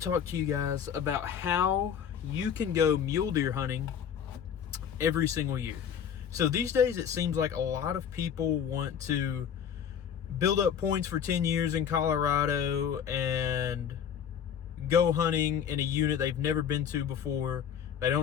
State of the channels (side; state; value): right; quieter; 8.2 dB